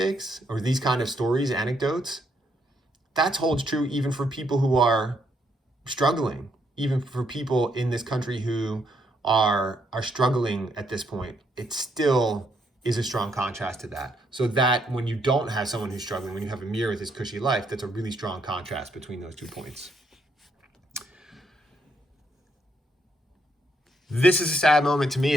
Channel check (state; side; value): normal; both; correlation 0.74